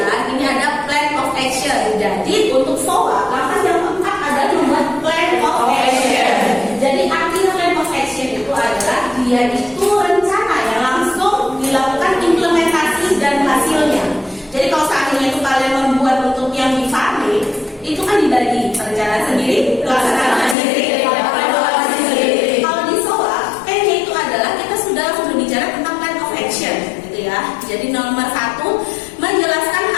ini ada plan of action. Jadi untuk SOA, langkah yang keempat adalah membuat plan of action. Jadi artinya plan of action itu adalah dia itu rencana yang langsung dilakukan implementasi dan hasilnya. Jadi kalau seandainya itu kalian membuat untuk yang di Farme, itu kan dibagi perencanaan sendiri, pelaksanaan sendiri, evaluasi sendiri. Kalau di SOA, P-nya itu adalah kita sudah berbicara tentang plan of action, gitu ya. Jadi nomor 1, menjelaskan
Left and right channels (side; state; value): right; drops out; at 20.6 s